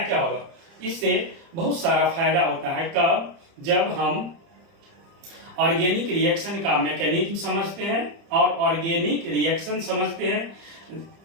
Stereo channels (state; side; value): late; left; 30 ms